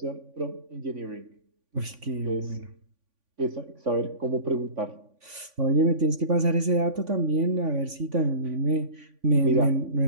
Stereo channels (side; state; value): left; late; 3.5 ms